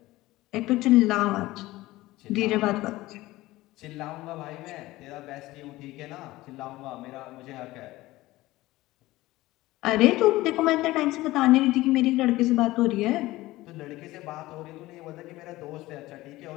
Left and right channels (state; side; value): quieter; right; 18.1 dB